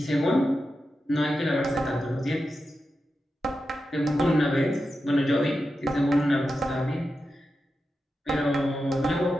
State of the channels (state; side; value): normal; both; correlation 0.90